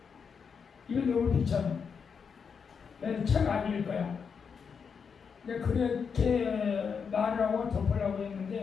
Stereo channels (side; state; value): right; quieter; 6.2 dB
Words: 이거 너무 비참해. 내가 책 안 읽을 거야. 내가 그렇게 말을 하고 덮으려고